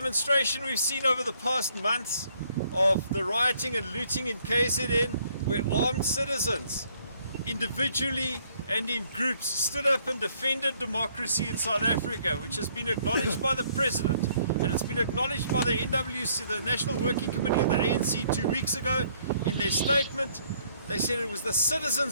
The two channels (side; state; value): both; inverted; correlation -0.65